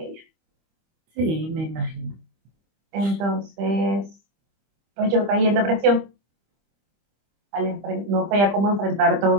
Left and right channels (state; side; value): late; left; 25 ms